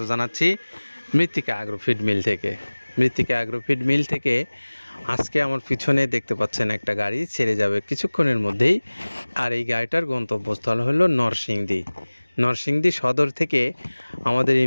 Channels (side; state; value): both; inverted; correlation -1.00